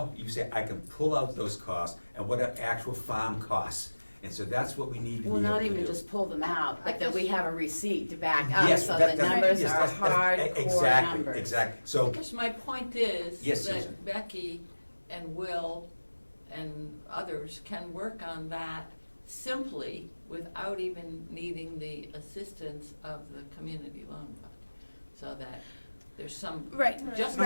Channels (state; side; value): inverted; both; correlation -1.00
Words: say, I can pull out those costs and what are actual farm costs. And so that's what we need to be able Well, to do. not even just pull them out, but I that we guess- have a receipt to back up, Yes, so that- the that- numbers yes, are that's- hardcore exactly, numbers. Exactly, so, Because my point is Yes, Susan. that Becky and Will and others can work on that simply without even needing the assistance of the community loan fund. So that there's some, Right. just